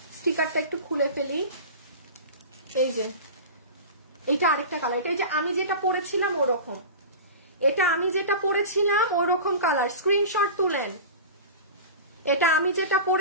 স্টিকারটা একটু খুলে ফেলি। এই যে এটা আরেকটা কালার, এটা এই যে আমি যেটা পরেছিলাম ওরকম, এটা আমি যেটা পরেছিলাম ওরকম কালার, স্ক্রিনশট তুলেন। এটা আমি যেটা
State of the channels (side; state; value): both; inverted; correlation -0.31